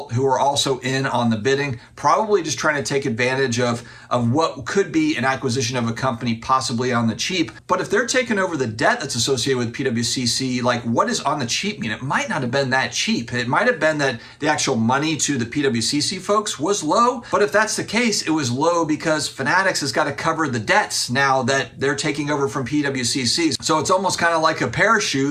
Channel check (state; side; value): identical; both; correlation 1.00